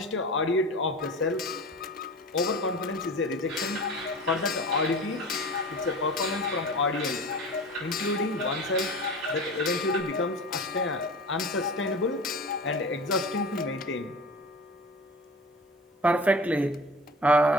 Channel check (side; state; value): both; normal; correlation 0.35